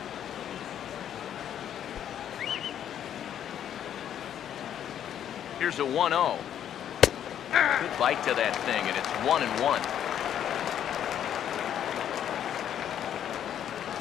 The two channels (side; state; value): right; quieter; 10.0 dB